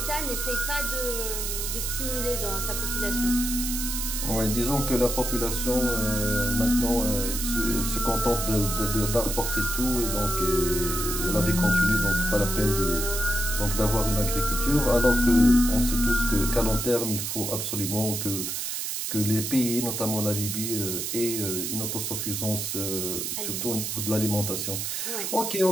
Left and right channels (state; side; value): noise; right; hiss, 3 dB below the sound